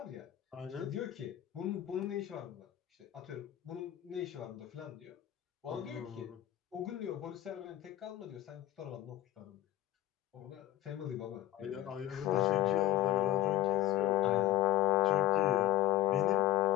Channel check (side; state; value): right; quieter; 13.5 dB